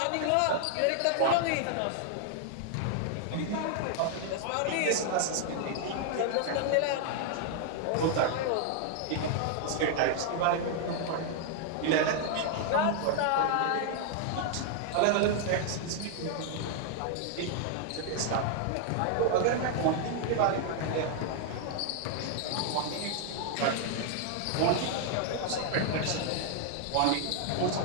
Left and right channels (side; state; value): both; different; correlation 0.00